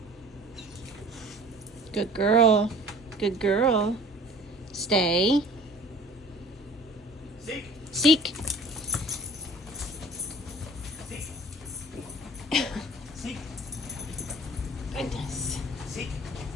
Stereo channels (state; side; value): normal; both; correlation 0.47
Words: Good girl. Good girl. Stay. Seek. Seek. Seek. Seek. Goodness. Seek.